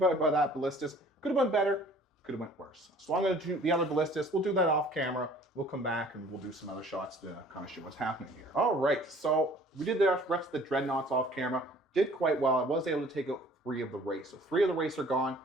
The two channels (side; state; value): both; normal; correlation 0.52